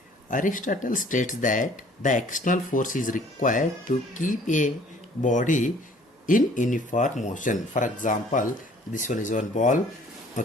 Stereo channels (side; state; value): both; normal; correlation 0.55